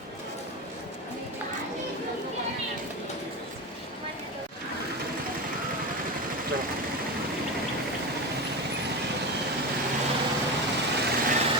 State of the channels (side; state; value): both; normal; correlation 0.21